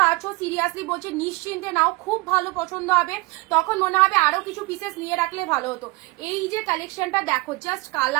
পাচ্ছ সিরিয়াসলি বলছে নিশ্চিন্তে নাও, খুব ভালো পছন্দ হবে, তখন মনে হবে আরো কিছু পিসেস নিয়ে রাখলে ভালো হতো। এই যে কালেকশনটা দেখো, জাস্ট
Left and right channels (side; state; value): left; quieter; 23.6 dB